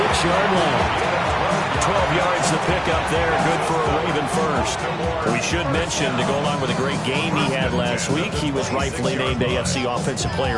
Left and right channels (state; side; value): identical; both; correlation 1.00